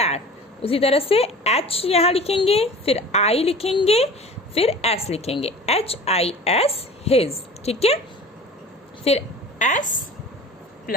उसी तरह से एच यहाँ लिखेंगे, फिर आई लिखेंगे, फिर एस लिखेंगे, एच आई एस, हिज। ठीक है, फिर S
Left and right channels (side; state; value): both; normal; correlation 0.41